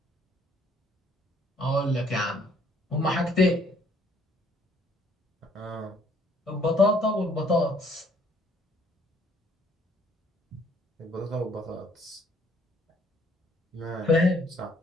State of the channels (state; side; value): normal; both; correlation 0.63